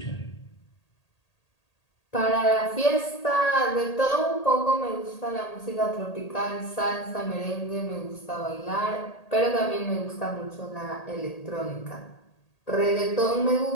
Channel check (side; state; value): right; late; 1.8 ms